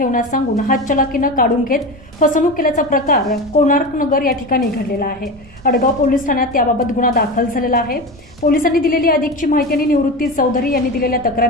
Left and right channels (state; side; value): normal; both; correlation 0.24